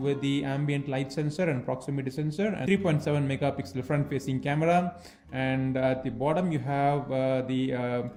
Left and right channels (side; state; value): both; identical; correlation 1.00